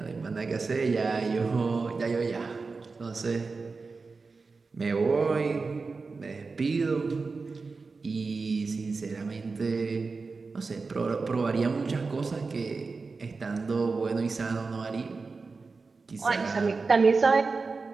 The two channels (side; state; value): left; quieter; 4.3 dB